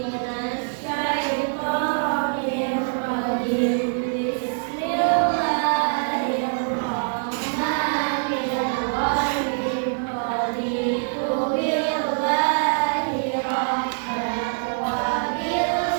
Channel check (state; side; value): silent; left; 58 dB below the other